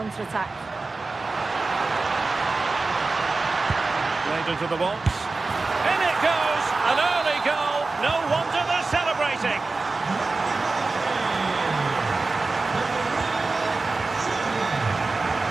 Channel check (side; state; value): left; quieter; 3.7 dB